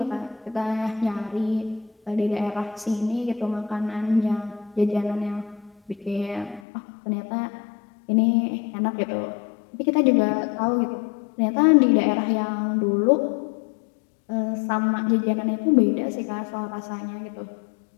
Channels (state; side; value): drops out; right; at 6.6 s